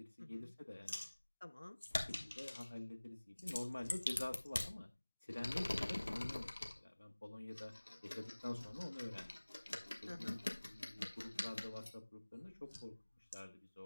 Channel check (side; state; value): both; inverted; correlation -1.00